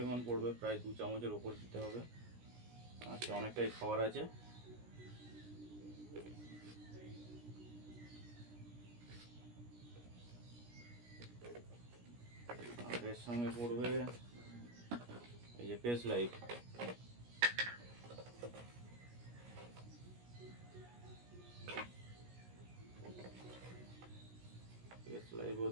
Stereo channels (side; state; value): left; late; 17 ms